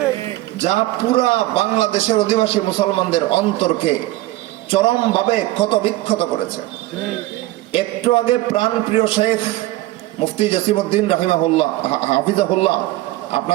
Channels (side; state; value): left; quieter; 17.3 dB